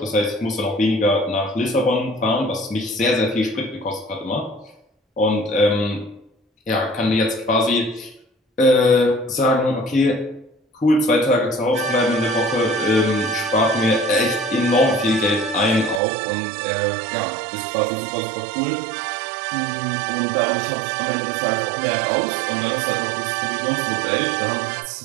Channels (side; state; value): left; drops out; at 16.0 s